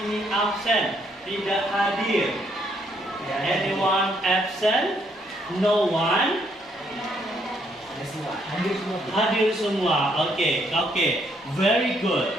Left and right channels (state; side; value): normal; both; correlation 0.71